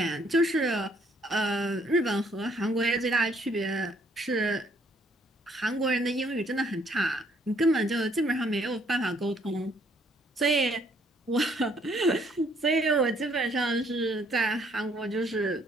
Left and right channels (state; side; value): normal; both; correlation 0.65